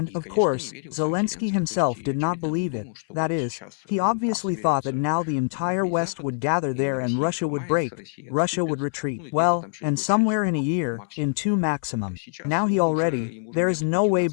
of course, Zelensky himself did not believe it. That is, he obviously thought that now the entire West would gather there and Russia would break, Russia would retreat. Well, and somewhere in a year, in 2 maximum. Now there is no way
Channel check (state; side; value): silent; right; 62 dB below the other